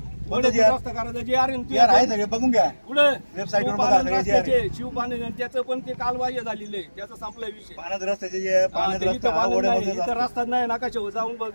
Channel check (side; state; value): both; inverted; correlation -1.00